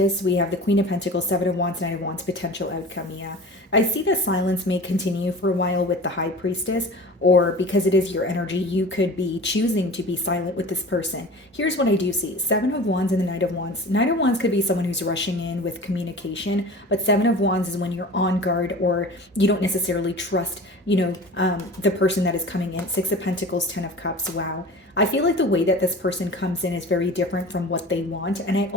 we have the Queen of Pentacles, Seven of Wands, Knight of Wands, potential outcome. Yeah, I see that silence may continue for a while with the High Priestess, or because it is your energy, you could be choosing to be silent with this person. Here's what I do see. Seven of Wands and the Knight of Wands. Knight of Wands could be someone who's rushing in with communication, but Seven of Wands is when you're on guard, or you don't necessarily trust, the person that is coming in. Six of Pentacles, Ten of Cups. Wow. I feel like the way that this person comes in is very different from what they want. And I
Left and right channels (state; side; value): normal; both; correlation 0.38